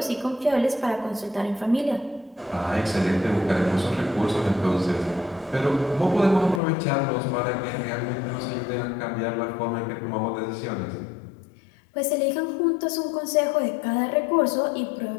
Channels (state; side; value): drops out; right; at 6.6 s